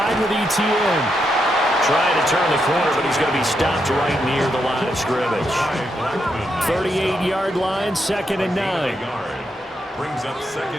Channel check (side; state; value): both; normal; correlation 0.82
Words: with ETN. Trying to turn the corner, but he's going to be stopped right near the line of of scrimmage. 38-yard line, 2nd and 9. Brings up